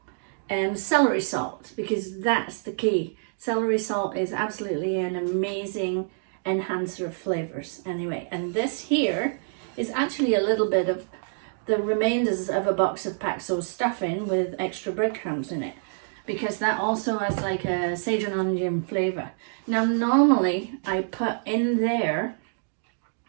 and celery salt, because that's the key. Celery salt is absolutely an amazing enhancer of flavors. Anyway, and this here is actually a little bit of the remainders of a box of Paxo stuffing with extra breadcrumbs in it, because that also has like a sage and onion flavor. Now normally I put in there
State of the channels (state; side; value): silent; left; digital silence